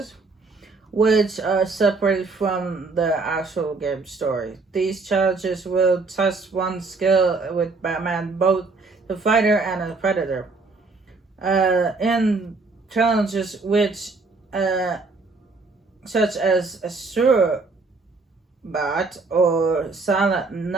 which are separated from the actual game story. These challenges will test one's skill with Batman, both the fighter and the Predator. In challenges which, such as a Sure Bat or Silent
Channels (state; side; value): quieter; left; 3.9 dB